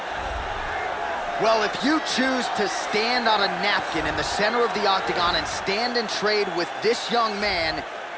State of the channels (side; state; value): both; identical; correlation 1.00